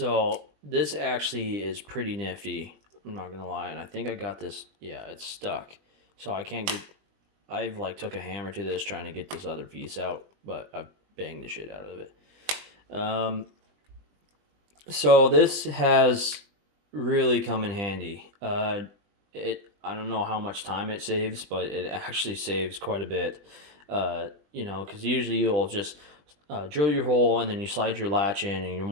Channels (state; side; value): late; left; 20 ms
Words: this actually is pretty nifty, I'm not gonna lie. And I think I got this, yeah, it's stuck. So I've like took a hammer to this trying to get this other piece out, but I banged the shit out of it. So this has really come in handy. I don't know how much time it saves, but it actually saves quite a bit. You know, because usually you'll just drill your hole and then you slide your latch in and you